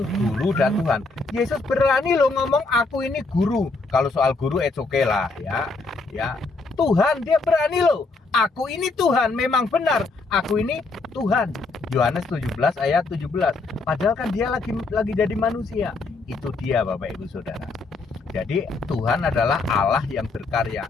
guru dan Tuhan. Yesus berani loh ngomong aku ini guru. Kalau soal guru it's okay lah, ya. Tuhan dia berani loh. Aku ini Tuhan, memang benar. Aku ini Tuhan. Yohanes 17 ayat 17. Padahal kan dia lagi jadi manusia. Itu dia Bapak Ibu Saudara. Jadi Tuhan adalah Allah yang berkarya.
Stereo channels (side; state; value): right; quieter; 3.7 dB